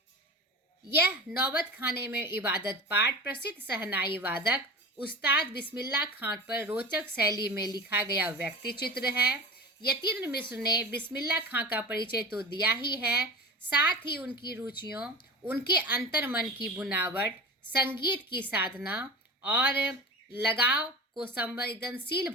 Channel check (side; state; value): both; normal; correlation 0.31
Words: यह नौबत खाने में इबादत पाठ प्रसिद्ध शहनाई वादक उस्ताद बिस्मिल्लाह खां पर रोचक शैली में लिखा गया व्यक्ति चित्र है। यतीन्द्र मिश्र ने बिस्मिल्लाह खां का परिचय तो दिया ही है, साथ ही उनकी रुचियों, उनके अंतर्मन की बुनावट, संगीत की साधना और लगाव को संवेदनशील